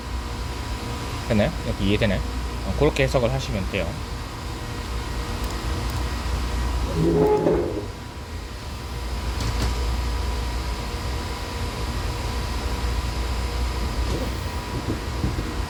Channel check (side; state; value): both; identical; correlation 1.00